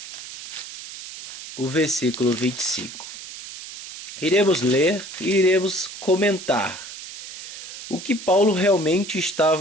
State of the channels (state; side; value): noise; right; hiss, 12 dB below the sound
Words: o versículo 25. Iremos ler e iremos comentar o que Paulo realmente